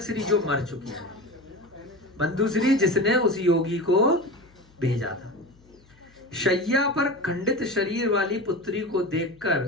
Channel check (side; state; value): left; noise; hum, 29 dB below the sound